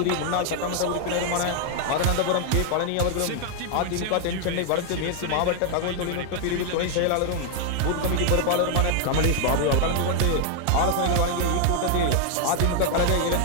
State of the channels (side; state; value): both; different; correlation 0.00